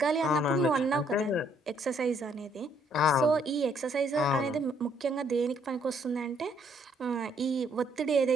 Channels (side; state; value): both; normal; correlation 0.68